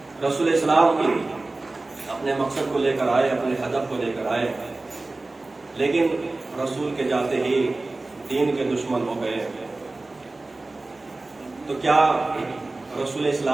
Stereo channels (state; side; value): quieter; left; 3.1 dB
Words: رسول اسلام اپنے مقصد کو لے کر آئے، اپنے ہدف کو لے کر آئے، لیکن رسول کے جاتے ہی دین کے دشمن ہو گئے۔ تو کیا رسول